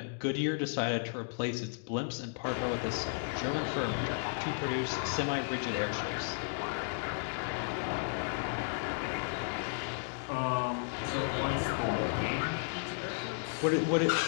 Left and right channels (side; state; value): right; silent; digital silence